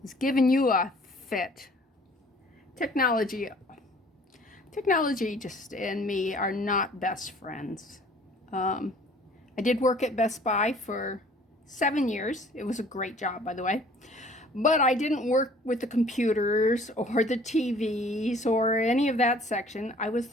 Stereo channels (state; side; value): normal; both; correlation 0.53